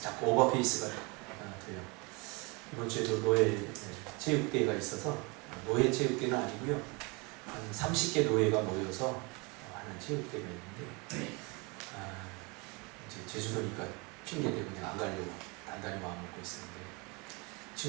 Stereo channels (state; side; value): quieter; left; 28.6 dB